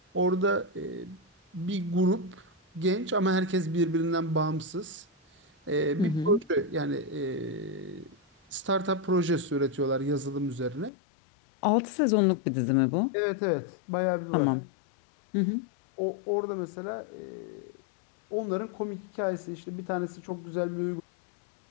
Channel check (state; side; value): drops out; right; at 10.9 s